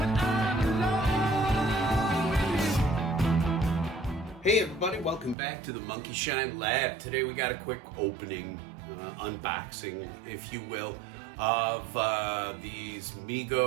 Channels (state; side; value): drops out; left; at 5.4 s